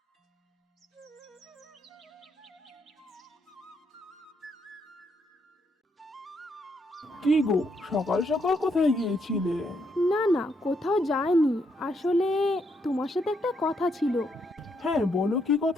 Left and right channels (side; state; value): both; normal; correlation 0.76